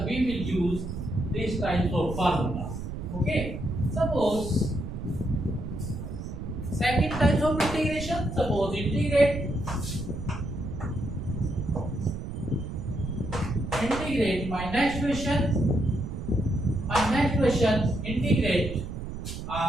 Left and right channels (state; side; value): noise; right; rumble, 7 dB below the sound